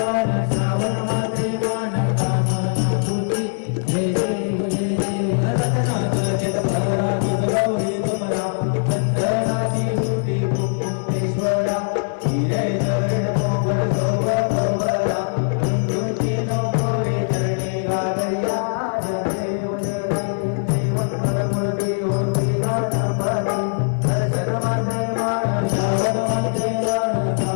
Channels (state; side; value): silent; right; 65 dB below the other